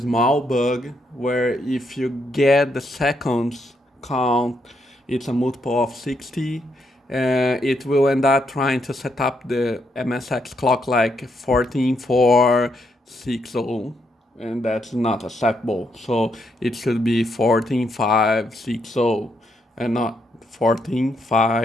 bug where if you get the seconds count, it's a multiple of 60. It will end up trying to set up the MSX clock like 14460, and that's not acceptable. So it should be 14.560 and not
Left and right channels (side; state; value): both; normal; correlation 0.77